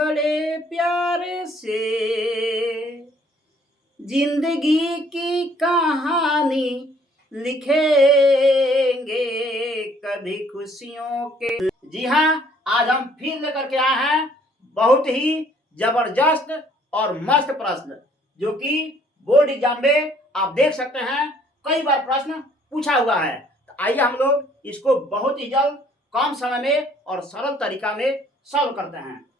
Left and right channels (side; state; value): both; normal; correlation 0.61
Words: प्यार से जिंदगी की कहानी लिखेंगे, कभी खुशियों के। जी हाँ, आज हम फिर लेकर के आए हैं बहुत ही जबरदस्त और मस्त प्रश्न, जो कि बोर्ड एग्जाम में आप देख सकते हैं कई बार प्रश्न पूछा हुआ है। तो आइए हम लोग इसको बहुत ही जल्द, कम समय में और सरल तरीका में सॉल्व करते हैं।